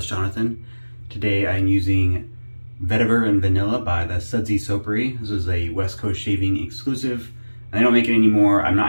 Jonathan. Today I'm using Vetiver and Vanilla by the Sudsy Soapery. This is a West Coast shaving exclusive. And they don't make it anymore. I'm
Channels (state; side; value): inverted; both; correlation -1.00